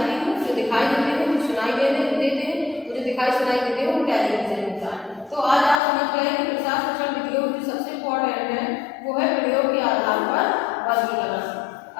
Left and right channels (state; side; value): drops out; right; at 5.8 s